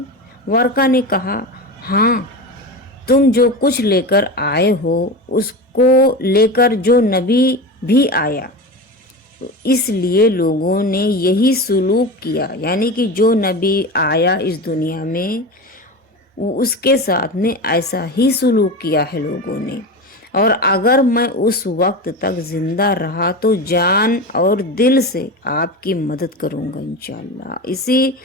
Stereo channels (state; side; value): normal; both; correlation 0.25